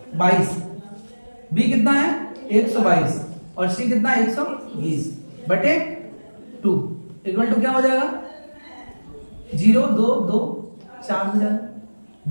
22, बी कितना है? 122, और सी कितना है? 120 बटे 2 इक्वल टू क्या हो जाएगा? 0 2 2 4 हो जाएगा।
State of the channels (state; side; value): inverted; both; correlation -1.00